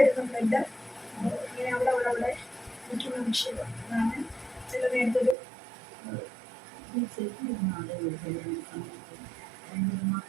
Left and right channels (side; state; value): left; drops out; at 5.4 s